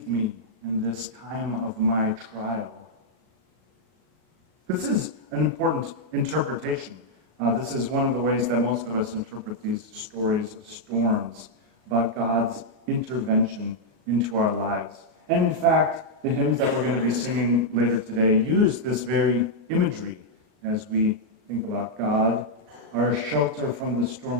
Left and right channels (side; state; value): left; late; 37 ms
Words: me in this time of my trial. This is an important interpretation. This is one of the ways that most of us interpret these stories of storms, about God's intervention into our lives. And in fact, the hymns that we're going to be singing later today use this very imagery as we think about God, our shelter from the